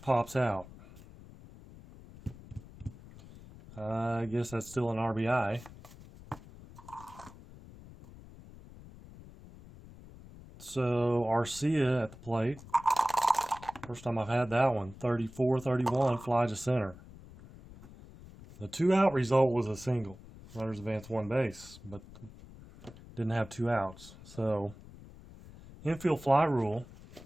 pops out. I guess that's still an RBI. So Arcia at the plate. First time I've had that one. 34-31, fly to center. The 2-out result was a single. Runners advance 1 base, but didn't have 2 outs. So Infield fly rule,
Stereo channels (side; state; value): left; noise; rumble, 18 dB below the sound